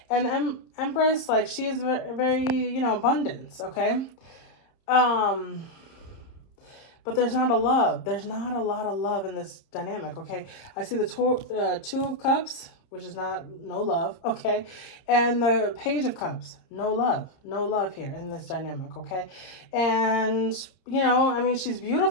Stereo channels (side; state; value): right; late; 31 ms